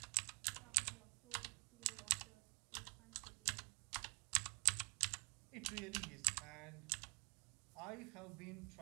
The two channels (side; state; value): left; quieter; 34.1 dB